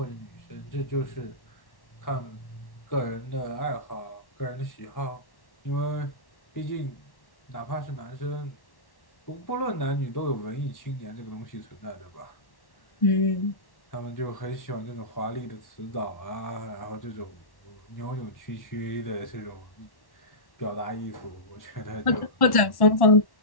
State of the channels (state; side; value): late; right; 1.1 ms